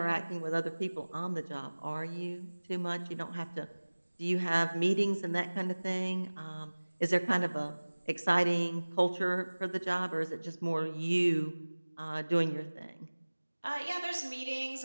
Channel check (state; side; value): inverted; both; correlation -1.00